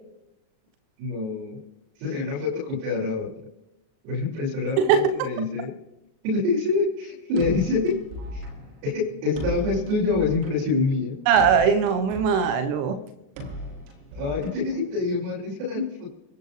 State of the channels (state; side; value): late; left; 37 ms